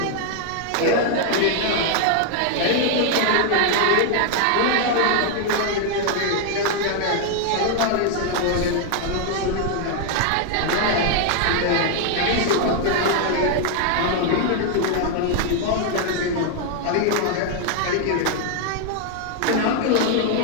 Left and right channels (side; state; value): both; different; correlation 0.00